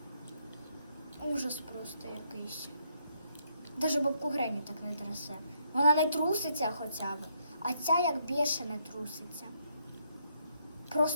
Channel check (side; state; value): both; inverted; correlation -0.73